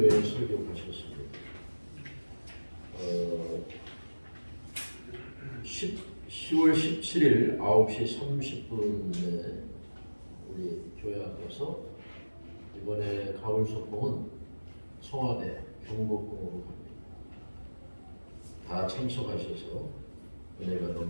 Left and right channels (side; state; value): both; inverted; correlation -1.00